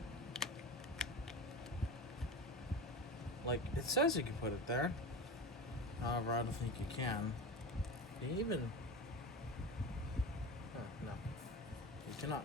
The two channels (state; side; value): normal; both; correlation 0.27